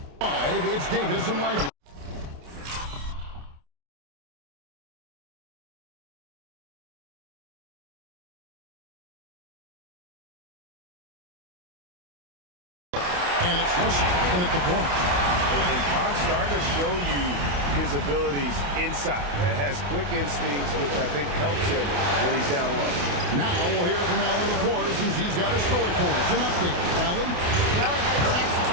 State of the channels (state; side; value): late; left; 28 ms